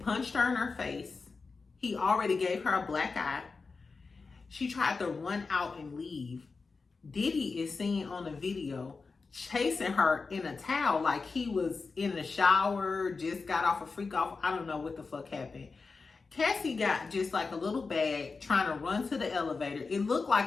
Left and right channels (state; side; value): quieter; right; 4.4 dB